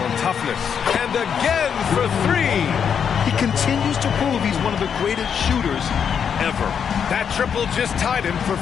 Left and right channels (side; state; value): right; quieter; 7.4 dB